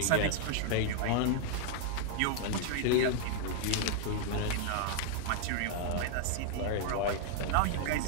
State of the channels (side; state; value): both; different; correlation 0.00